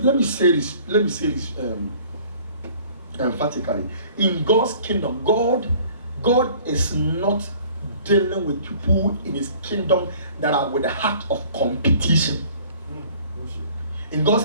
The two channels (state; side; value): inverted; both; correlation -0.51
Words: me say this emphatically. In God's kingdom, God is not dealing with people in His kingdom that are with a heart of competition. In God's